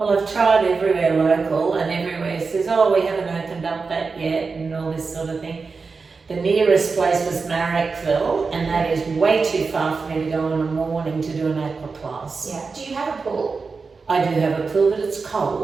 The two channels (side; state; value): left; quieter; 4.6 dB